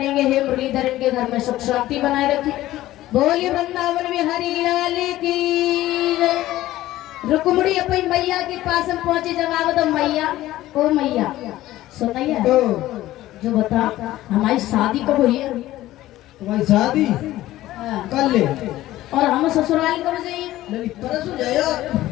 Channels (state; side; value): quieter; right; 15.4 dB